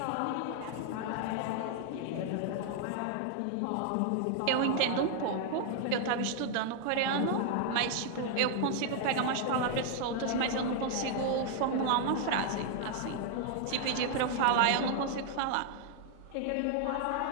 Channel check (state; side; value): different; both; correlation 0.00